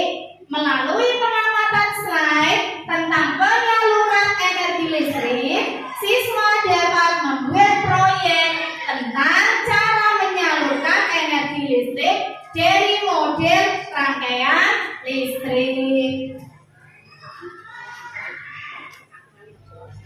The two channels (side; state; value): both; identical; correlation 1.00